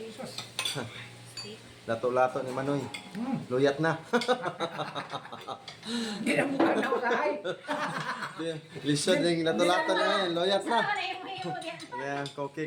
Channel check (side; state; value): both; identical; correlation 1.00